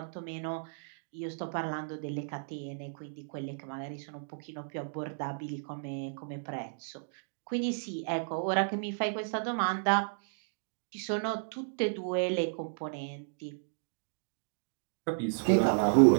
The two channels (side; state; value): left; silent; digital silence